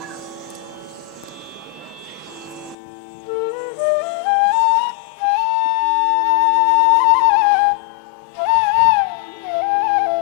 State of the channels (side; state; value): right; drops out; at 2.8 s